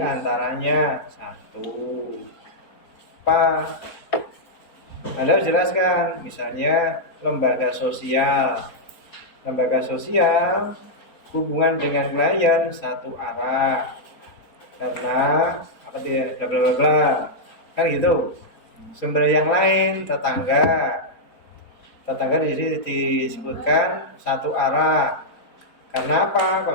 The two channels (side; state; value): right; late; 4.4 ms